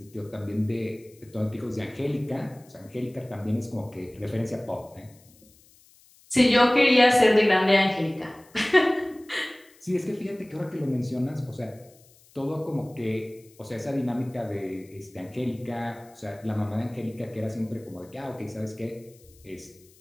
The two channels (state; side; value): noise; left; hiss, 28 dB below the sound